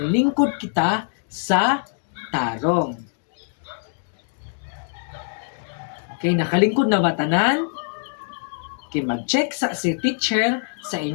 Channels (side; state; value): right; silent; digital silence